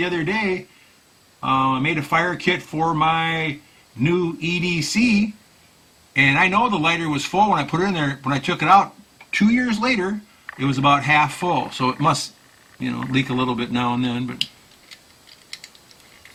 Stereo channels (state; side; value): identical; both; correlation 1.00